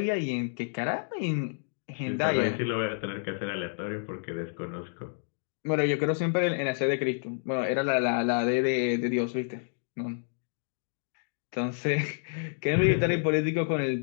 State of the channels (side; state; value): right; silent; digital silence